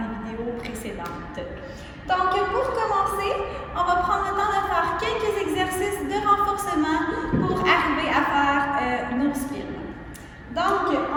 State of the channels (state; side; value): identical; both; correlation 1.00